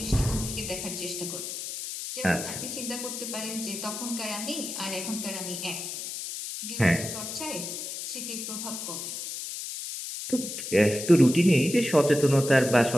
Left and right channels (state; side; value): noise; left; hiss, 6 dB below the sound